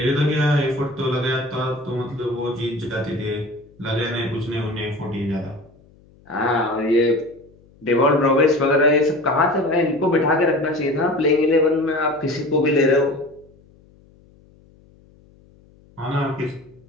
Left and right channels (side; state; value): left; noise; hum, 28 dB below the sound